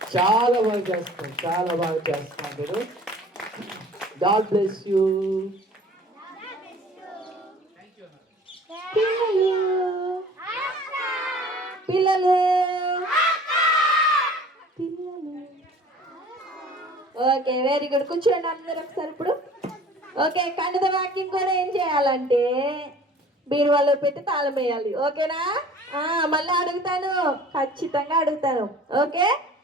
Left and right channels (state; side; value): normal; both; correlation 0.47